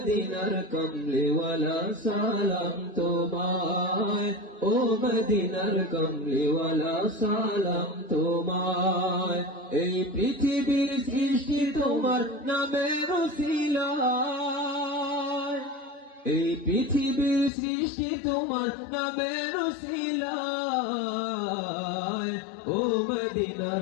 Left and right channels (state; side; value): drops out; right; at 17.5 s